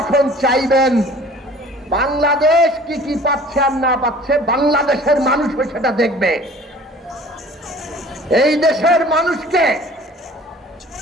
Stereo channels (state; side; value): normal; both; correlation 0.48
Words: চাইবেন, বাংলাদেশ কি কি পাচ্ছে আর না পাচ্ছে বাংলাদেশের মানুষও সেটা দেখবে। এই দেশের মানুষকে